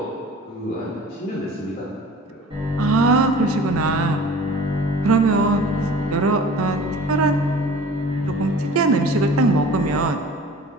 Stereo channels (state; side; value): normal; both; correlation 0.44